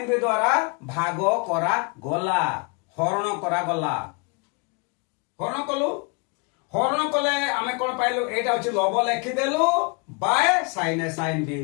b द्वारा भाग करा गला हरण करा गला हरण कलु हरण कले आमे कोन पाइलु एटा अछि लब लेखि देलु bye sin a sin b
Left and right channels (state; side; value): quieter; right; 32.2 dB